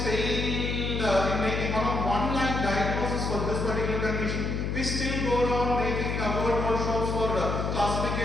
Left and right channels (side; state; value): left; noise; hum, 1 dB below the sound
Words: failed in making one-line diagnosis for this particular condition? We still go around making word workshops for